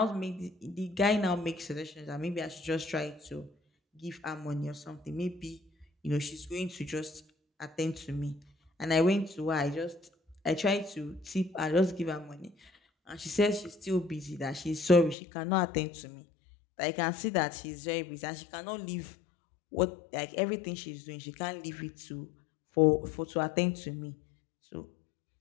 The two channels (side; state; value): right; drops out; at 15.2 s